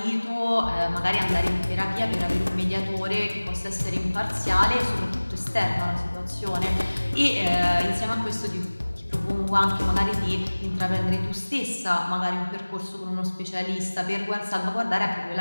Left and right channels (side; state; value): both; inverted; correlation -1.00